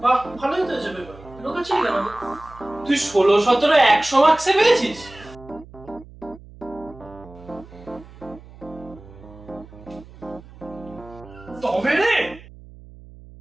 বাহ, ভালোই তো হয়েছে পেপার। লুকাচ্ছিলি কেন? তুই 16, 17, 100 মার্কসে পেয়েছিস? তবে রে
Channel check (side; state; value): right; noise; hum, 20 dB below the sound